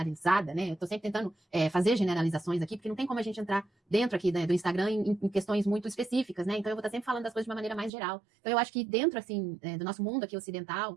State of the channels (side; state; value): left; drops out; at 7.9 s